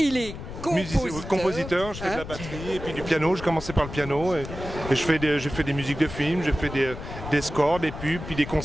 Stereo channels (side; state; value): left; noise; rumble, 10 dB below the sound